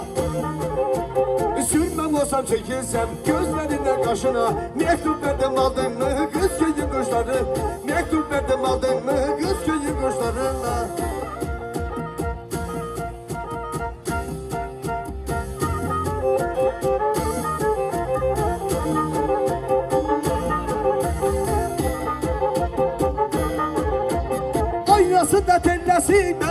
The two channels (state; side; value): identical; both; correlation 1.00